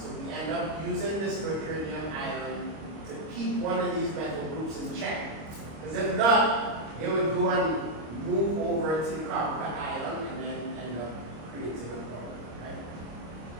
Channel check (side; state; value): left; late; 25 ms